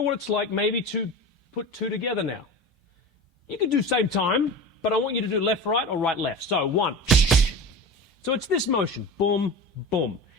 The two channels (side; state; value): both; normal; correlation 0.31